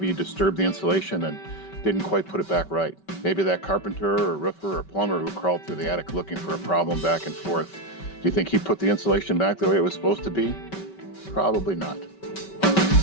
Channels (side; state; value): right; late; 5.2 ms